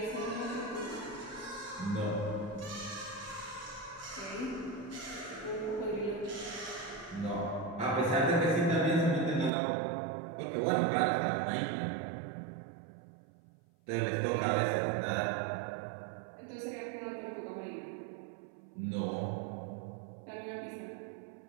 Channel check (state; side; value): drops out; left; at 9.5 s